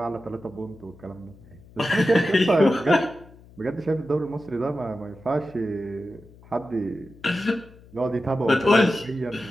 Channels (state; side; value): noise; left; hum, 23 dB below the sound